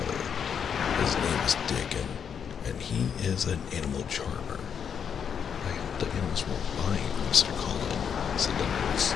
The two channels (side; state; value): right; quieter; 7.5 dB